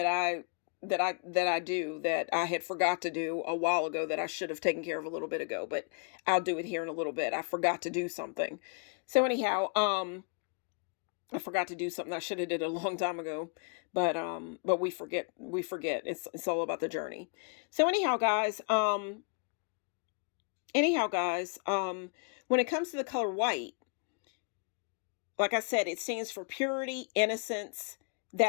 do that I had forgot to do a while ago, that I should have taken care of a little bit ago, but I'll do it here in a little bit. I forgot to do something. So anyhow, I forgot to do something I should have did a long time ago, but we forget. It's all about the journey. So anyhow, guys, when it comes to the color white, like I said, it stands for purity, innocence,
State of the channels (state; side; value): quieter; right; 36.9 dB